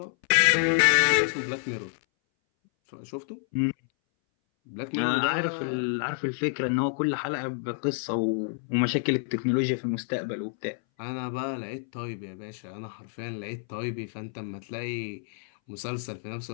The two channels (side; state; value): right; silent; 59 dB below the other